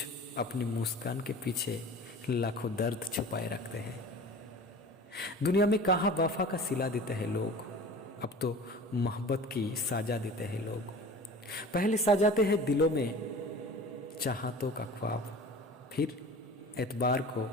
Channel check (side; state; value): both; normal; correlation 0.39